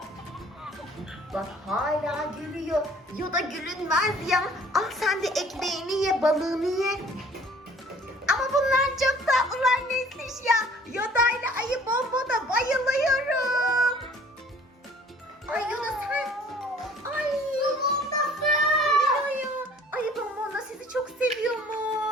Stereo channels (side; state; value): both; normal; correlation 0.53